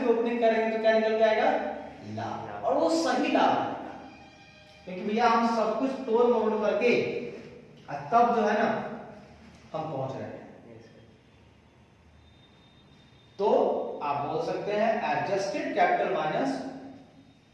ओपनिंग करेंगे तो क्या निकल जाएगा, लाभ, और वो सही लाभ आएगा, क्योंकि भैया हम सब कुछ तोड़ मोड़ करके तब जो है ना हम पहुंच रहे हैं। तो आप बोल सकते हैं adjusted capital minus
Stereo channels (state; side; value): identical; both; correlation 1.00